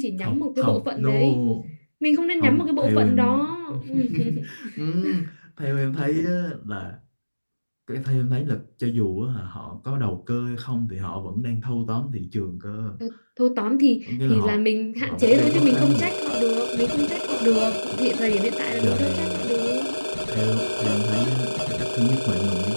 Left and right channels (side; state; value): both; inverted; correlation -1.00